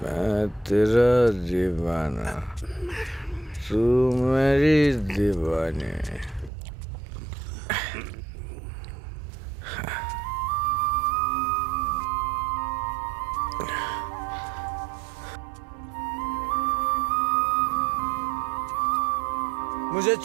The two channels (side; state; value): left; drops out; at 6.5 s